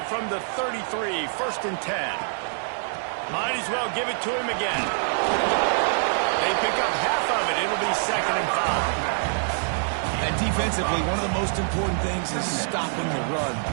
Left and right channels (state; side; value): silent; left; digital silence